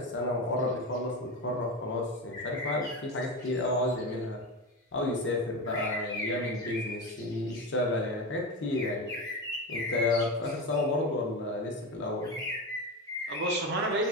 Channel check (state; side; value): normal; both; correlation 0.20